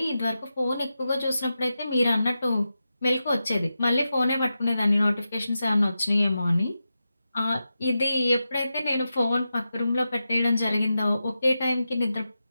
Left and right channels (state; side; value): inverted; both; correlation -0.90